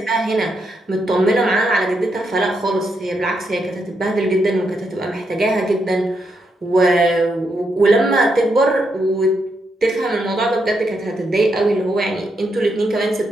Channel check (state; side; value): normal; both; correlation 0.81